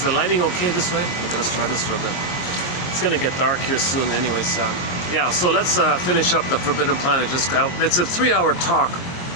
the lighting okay this way? Okay, let's try this for a bit. It's gonna get dark here soon anyways. Yeah, so let's finish up the Forbidden Planet. It's a 3-hour talk.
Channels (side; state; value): right; late; 23 ms